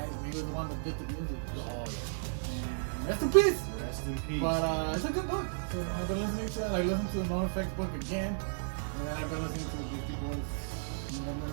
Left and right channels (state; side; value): silent; left; 55 dB below the other